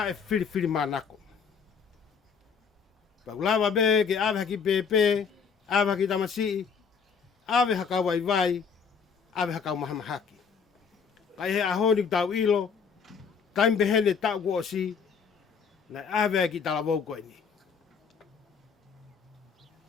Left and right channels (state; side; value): quieter; right; 6.2 dB